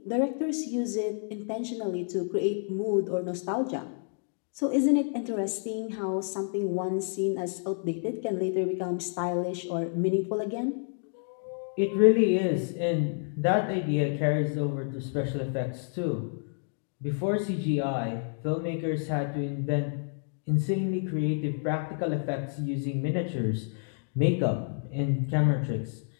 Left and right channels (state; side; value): silent; right; digital silence